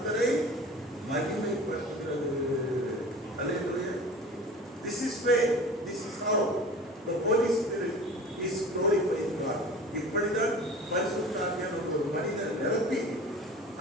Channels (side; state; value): both; normal; correlation 0.39